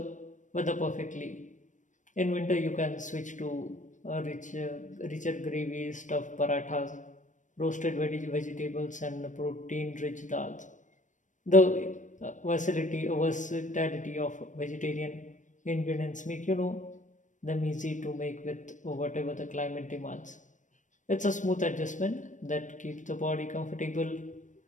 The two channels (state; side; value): late; right; 0.37 ms